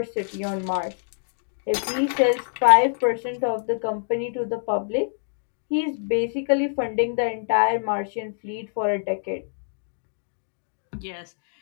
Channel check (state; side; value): silent; right; digital silence